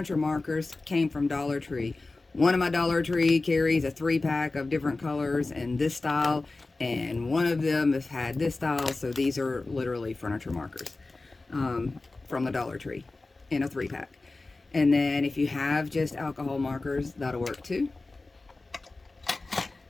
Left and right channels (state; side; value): quieter; right; 3.3 dB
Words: markers came from Dollar Tree. One of my Dollar Tree carries a 3-pack of different colors and this style, and one of them has had this style, so these are literally furniture markers from the Dollar Tree in a 3-pack. And then if you have just alcohol markers, that'll work too.